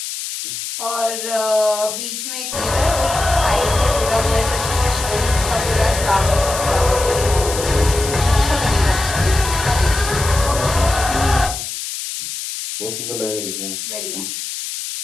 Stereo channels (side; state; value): left; noise; hiss, 6 dB below the sound